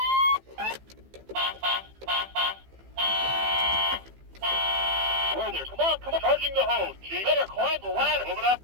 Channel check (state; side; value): late; left; 15 ms